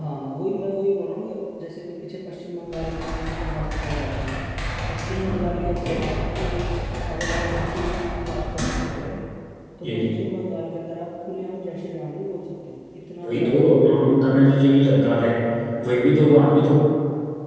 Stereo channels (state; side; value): identical; both; correlation 1.00